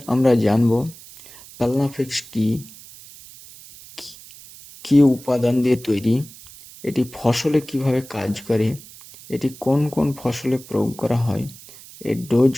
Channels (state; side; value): noise; right; hiss, 19 dB below the sound